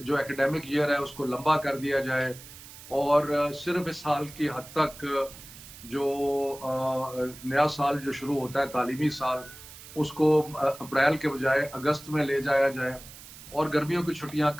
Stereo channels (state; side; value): noise; right; hiss, 17 dB below the sound